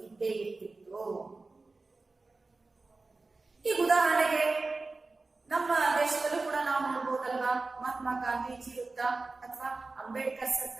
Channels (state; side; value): quieter; left; 3.6 dB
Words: ಇದ್ದೇ ಇರ್ತಿತ್ತು. ಈಗ ಉದಾಹರಣೆಗೆ ನಮ್ಮ ದೇಶದಲ್ಲೂ ಕೂಡ ನಾವು ನೋಡ್ಬೋದಲ್ವಾ, ಮಹಾತ್ಮ ಗಾಂಧೀಜಿ ವೃತ್ತ ಅಥವಾ ಅಂಬೇಡ್ಕರ್